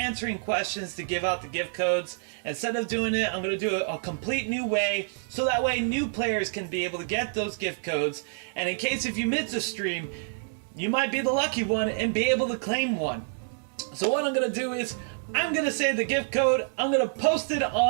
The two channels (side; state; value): left; silent; digital silence